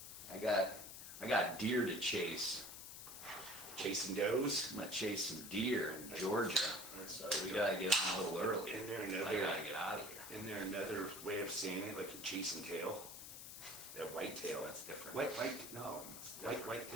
I got deer to chase. Chasing does. I'm gonna chase some deer in Georgia, so we gotta get on a little early. Isn't there I another? gotta get out of here. Isn't there another way of saying it, like a chasing tail? That white tail. That's different. White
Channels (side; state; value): left; noise; hiss, 11 dB below the sound